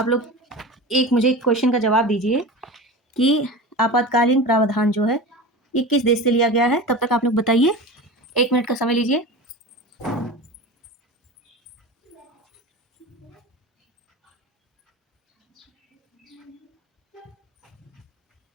लोग मुझे एक क्वेश्चन का जवाब दीजिए कि आपातकालीन प्रावधान जो है ये किस देश से लिया गया है। तब तक आप लोग बताइए, 1 मिनट का समय लीजिए।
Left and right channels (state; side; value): normal; both; correlation 0.31